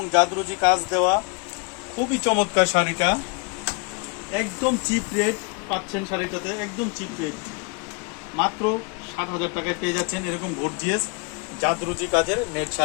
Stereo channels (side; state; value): right; quieter; 31.1 dB